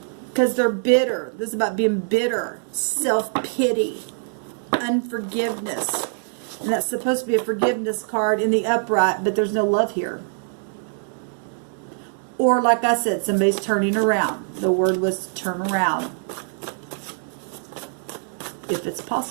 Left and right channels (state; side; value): silent; left; digital silence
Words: Because they're bitter. This is about being bitter. Self-pity. Unforgiveness. And that's supposed to be a forgiveness card in the upright, but there's no love here. Or, like I said, somebody's turning around. The word was turn around. If it's